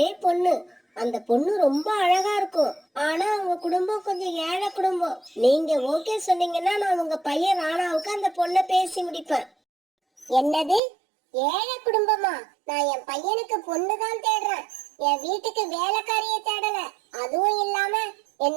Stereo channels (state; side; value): drops out; left; at 10.8 s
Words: பொண்ணு. அந்த பொண்ணு ரொம்ப அழகா இருக்கும். ஆனா அவங்க குடும்பம் கொஞ்சம் ஏழை குடும்பம். நீங்க ஓகே சொன்னீங்கன்னா நான் உங்க பையன் ராணாவுக்கு அந்த பொண்ணை பேசி முடிப்பேன். என்னது, ஏழை குடும்பமா? நான் என் பையனுக்கு பொண்ணுதான் தேடுறேன். என் வீட்டுக்கு வேலைக்காரிய தேடல. அதுவும் இல்லாம